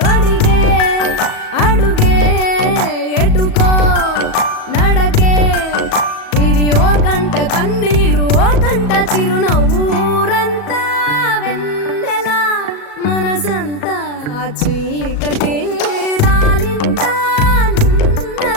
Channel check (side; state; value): right; late; 37 ms